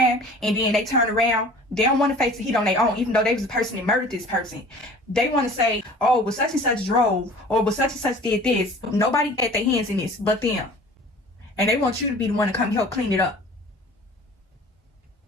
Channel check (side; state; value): both; normal; correlation 0.45